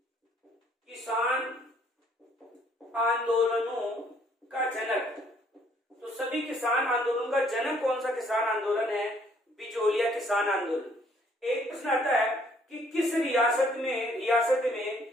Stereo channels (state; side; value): normal; both; correlation 0.63